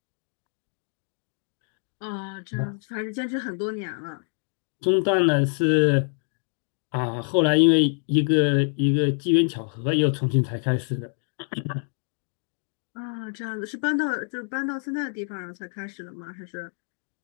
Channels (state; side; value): silent; right; 58 dB below the other